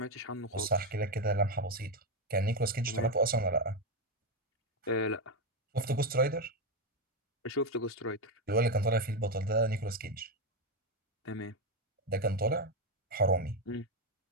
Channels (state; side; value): normal; both; correlation 0.07